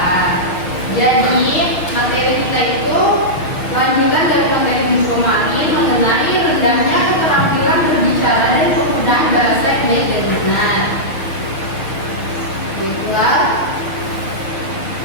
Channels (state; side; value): late; right; 6.5 ms